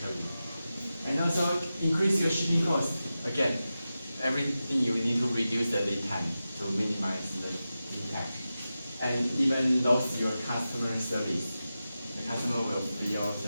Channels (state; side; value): inverted; both; correlation -0.93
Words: And also increase your shipping cost. Again, everything you need to reduce the lead time to minimize the impact. And even lose your customer service. The customer will feel